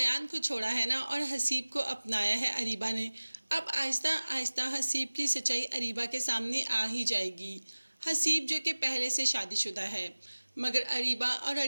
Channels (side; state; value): both; inverted; correlation -1.00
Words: को छोड़ा है ना, और हसीब को अपनाया है अरीबा ने। अब आहिस्ता आहिस्ता हसीब की सच्चाई अरीबा के सामने आ ही जाएगी। हसीब जो कि पहले से शादीशुदा है, मगर अरीबा और